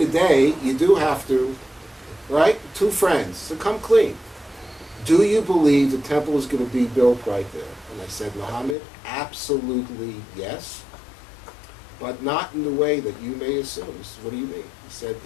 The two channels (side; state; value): right; drops out; at 8.8 s